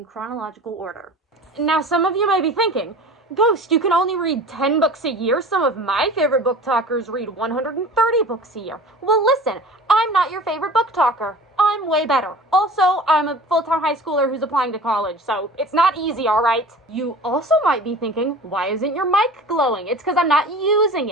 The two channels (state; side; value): normal; both; correlation 0.40